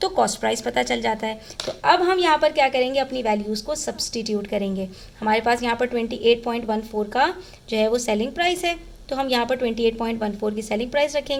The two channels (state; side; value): identical; both; correlation 1.00